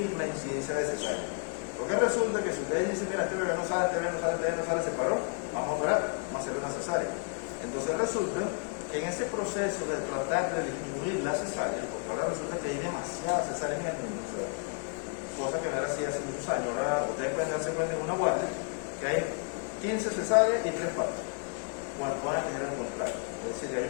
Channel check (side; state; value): right; quieter; 39.8 dB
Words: la incidencia de cesárea. Porque resulta que si ustedes dicen: mira, este bebé no sale, se paró, vamos a operar, vamos a hacerle una cesárea. Entonces resulta que en ese proceso de tratar de disminuir la cesárea, porque ahora resulta que hay demasiadas cesáreas en el mundo, o sea, cosa que no era así hace muchos años. Ahora ustedes pueden darse cuenta en una guardia que hay 15 cesáreas y 3 partos, cuando van a tener un contrato. Es decir, hay